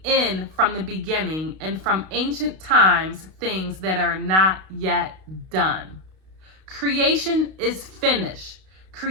end from the beginning, and from ancient times things that are not yet done. Creation is finished.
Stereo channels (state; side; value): late; left; 32 ms